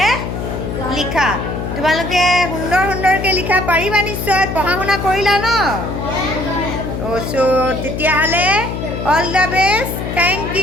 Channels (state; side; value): noise; left; hum, 5 dB below the sound